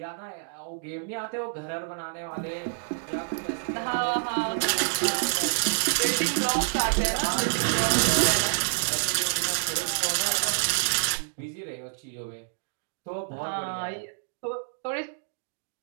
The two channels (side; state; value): left; silent; digital silence